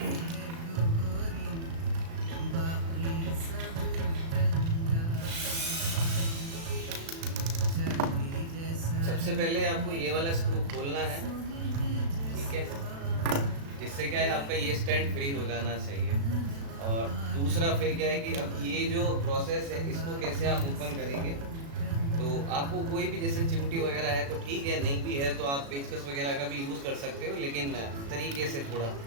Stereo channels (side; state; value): left; late; 36 ms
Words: सबसे पहले आपको ये वाला स्क्रू खोलना है, ठीक है, जिससे क्या है आपका ये स्टैंड फ्री हो जाना चाहिए। और दूसरा फिर क्या है कि अब ये जो प्रोसेस है इसको कैसे आप ओपन करेंगे। तो आपको कोई भी जैसे चिमटी वगैरह है तो ठीक है, नहीं भी है तो आप पेचकस वगैरह का भी यूज़ कर सकते हो, लेकिन तरीके से थोड़ा